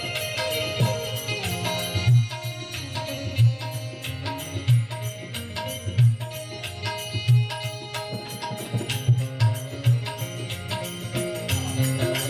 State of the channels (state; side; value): identical; both; correlation 1.00